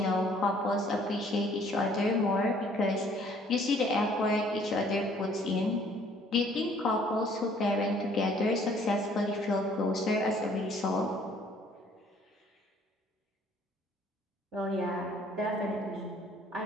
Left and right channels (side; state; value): both; normal; correlation 0.59